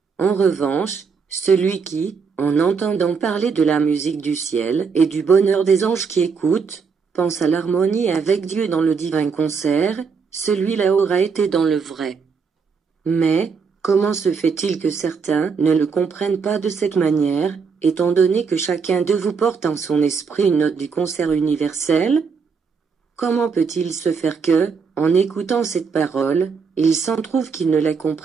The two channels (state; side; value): quieter; left; 5.5 dB